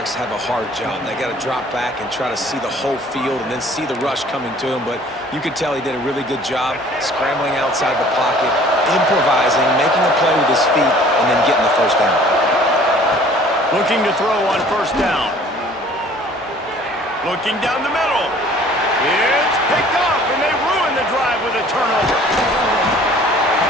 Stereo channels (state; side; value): normal; both; correlation 0.52